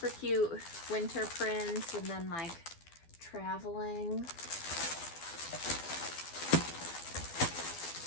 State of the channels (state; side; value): late; right; 12 ms